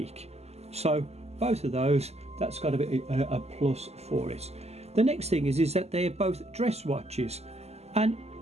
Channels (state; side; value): late; left; 0.30 ms